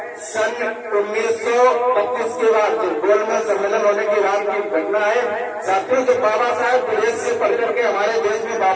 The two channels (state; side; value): identical; both; correlation 1.00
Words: सन 1932 के बाद गोलमेज सम्मेलन होने के बाद की घटना है। साथियों, जब बाबा साहब विदेश से पढ़ करके हमारे देश में